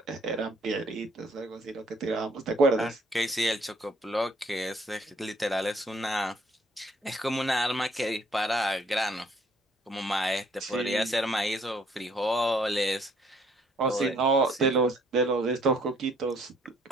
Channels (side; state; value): both; normal; correlation 0.64